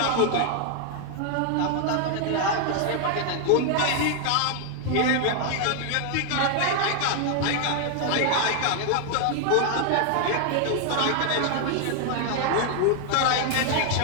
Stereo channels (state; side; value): different; both; correlation 0.00